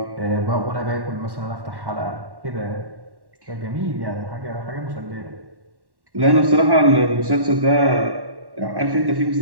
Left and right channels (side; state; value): left; late; 1.1 ms